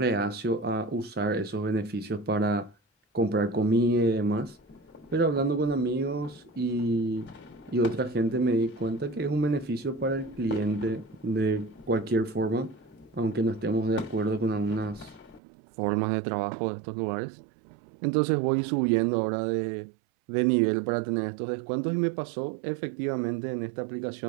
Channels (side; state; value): left; drops out; at 15.4 s